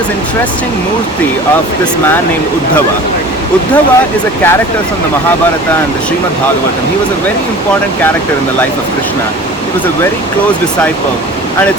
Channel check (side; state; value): both; normal; correlation 0.41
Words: interesting murti of this man named Uddhava. Uddhava is a character from the Mahabharata and the Srimad Bhagavatam. He was a very important character in the life of Krishna. He was a very close disciple, and